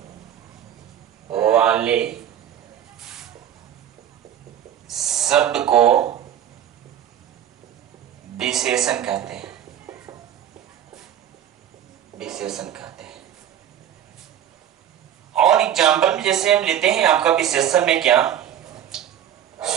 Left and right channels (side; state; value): left; quieter; 10.4 dB